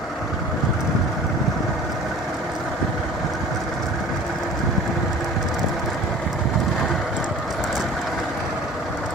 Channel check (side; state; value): both; normal; correlation 0.45